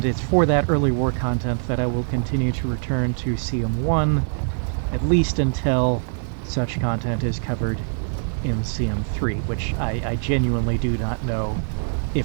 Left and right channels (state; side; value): silent; left; 63 dB below the other